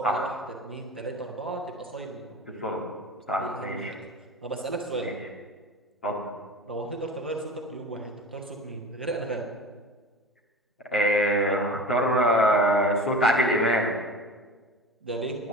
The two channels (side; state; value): both; normal; correlation 0.34